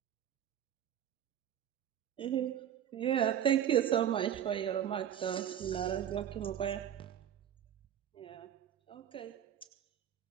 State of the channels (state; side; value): quieter; left; 10.0 dB